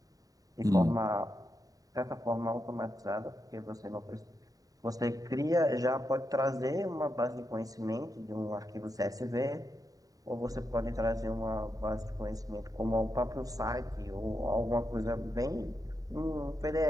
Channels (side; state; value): left; late; 0.18 ms